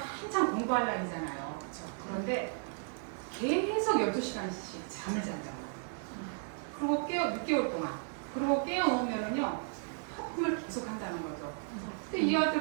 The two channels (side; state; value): left; silent; 55 dB below the other